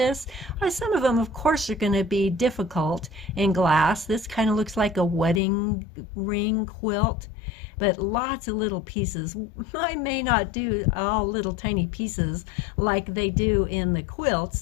Some of them, of course, are going to be difficult in glass. This kind of looks like a wedding ring quilt, but lots of little pieces. I may not do all little tiny pieces like they do in the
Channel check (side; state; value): right; drops out; at 5.4 s